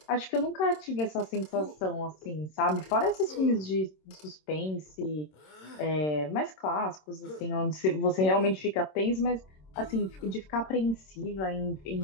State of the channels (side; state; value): right; late; 26 ms